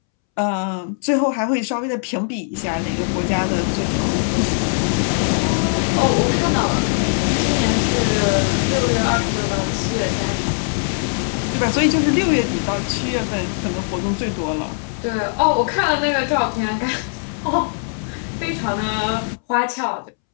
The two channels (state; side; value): silent; right; 66 dB below the other